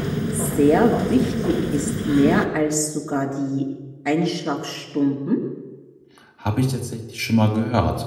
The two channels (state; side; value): identical; both; correlation 1.00